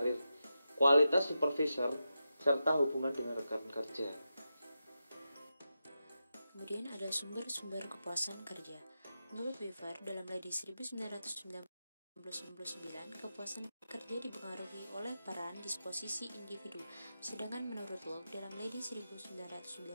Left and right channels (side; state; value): both; inverted; correlation -0.89